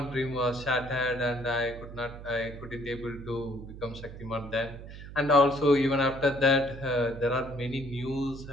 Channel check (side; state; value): right; noise; hum, 13 dB below the sound